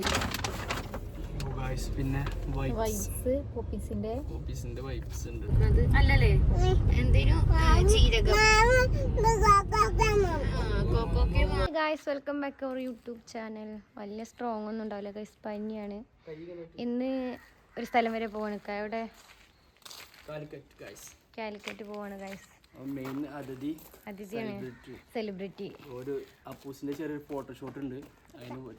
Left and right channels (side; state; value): both; identical; correlation 1.00